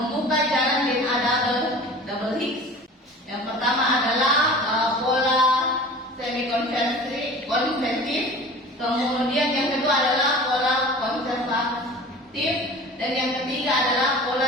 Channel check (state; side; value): normal; both; correlation 0.40